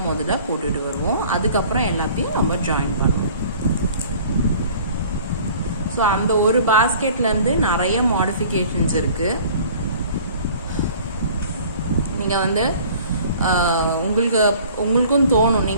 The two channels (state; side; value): inverted; both; correlation -0.49